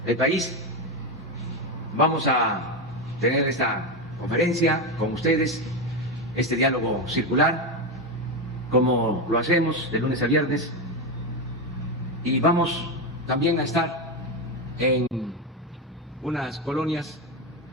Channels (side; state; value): both; normal; correlation 0.12